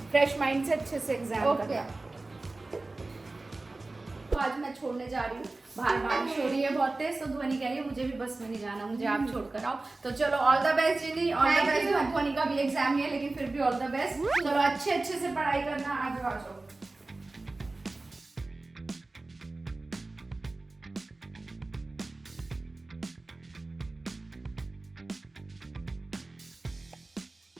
फ्रेश माइंड से अच्छे से एग्जाम करना। तो आज मैं छोड़ने जा रही हूँ, बाहर बारिश हो रही है बहुत तेज, तो ध्वनि कह रही है मुझे भी बस में नहीं जाना, मुझे आप छोड़ कर आओ। तो चलो all the best Ginny, all the best. ध्वनि का भी एग्जाम ही है, लेकिन फिर भी ऑल द बेस्ट। चलो अच्छे से पढ़ाई करना, आ जाओ।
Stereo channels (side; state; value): left; quieter; 3.2 dB